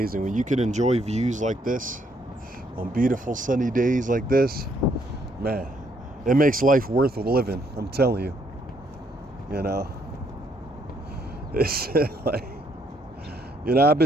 When you can enjoy views like this on beautiful sunny days like this, man, it makes life worth living. I'm telling you. You know, it's like, I've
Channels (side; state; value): both; normal; correlation 0.71